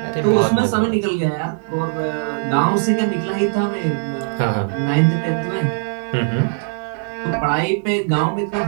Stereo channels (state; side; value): silent; left; digital silence